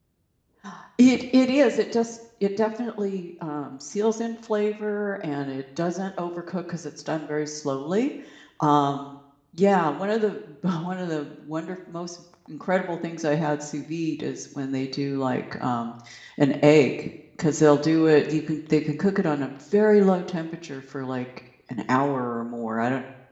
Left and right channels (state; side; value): identical; both; correlation 1.00